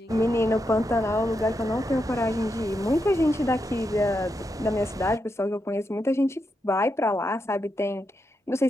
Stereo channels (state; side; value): normal; both; correlation 0.85